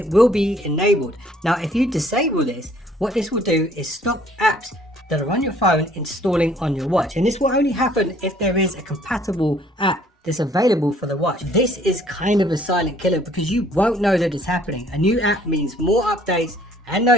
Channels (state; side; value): normal; both; correlation 0.59